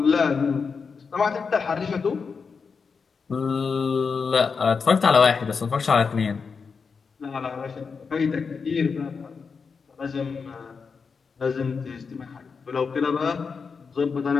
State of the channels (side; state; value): right; quieter; 5.4 dB